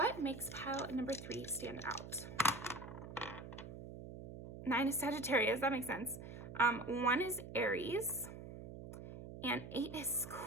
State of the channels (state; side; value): noise; right; hum, 11 dB below the sound